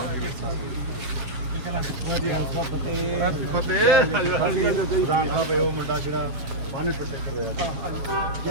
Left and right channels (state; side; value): late; left; 7.3 ms